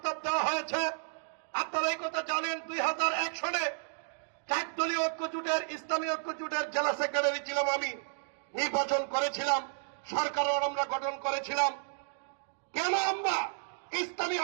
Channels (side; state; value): left; silent; digital silence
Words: দেওয়া হয়েছে। আপনারা এই কথা জানেন, 2001 সালে 4 দলীয় ঐক্যজোটের, ইসলামী ঐক্যজোটের জেলা সেক্রেটারি ছিলাম আমি, নির্বাচন করেছিলাম, সরকারও আমরা গঠন করেছিলাম। কেন আমরা ইসলামী